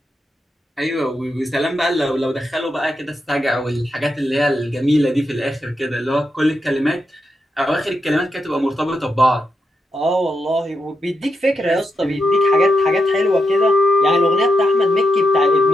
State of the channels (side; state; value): both; normal; correlation 0.84